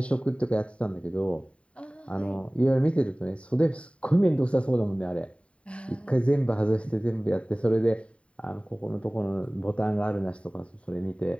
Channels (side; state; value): right; late; 0.062 ms